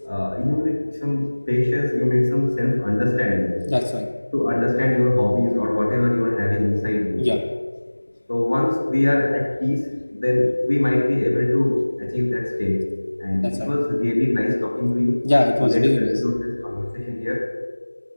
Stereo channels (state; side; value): inverted; both; correlation -1.00